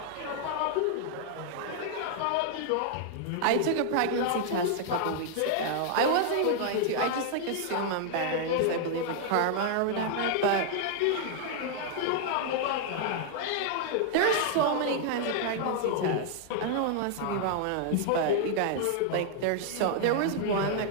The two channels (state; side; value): different; both; correlation 0.00